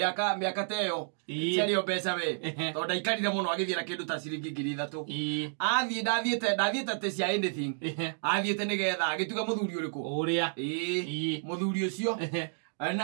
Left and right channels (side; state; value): left; silent; digital silence